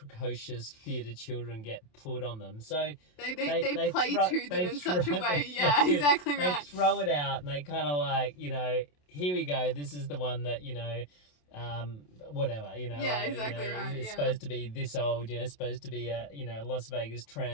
theatre children get put on them. So they play to them in such a way. Yeah, exactly right. They throw it out, and they kind of here we go, this is the one that, whatever, you know. Yeah, like, exactly you know, right, It's yeah. supposed to be this old, you know, supposed to be a, you know, Las Vegas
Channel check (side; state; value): right; late; 27 ms